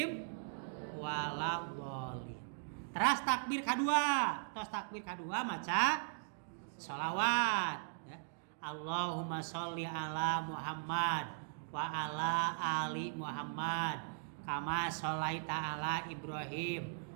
waladhdallin. Terus takbir kadua, tos takbir kadua maca sholawat ya. Allahumma sholli ala Muhammad wa ala ali Muhammad kama sholaita ala Ibrahim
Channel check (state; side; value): silent; left; digital silence